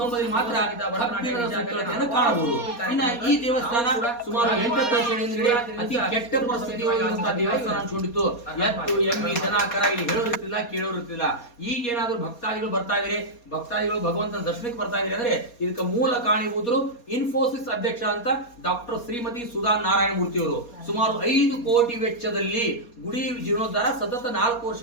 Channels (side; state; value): right; late; 4.2 ms